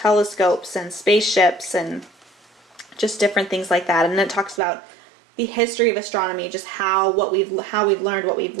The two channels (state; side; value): drops out; left; at 4.6 s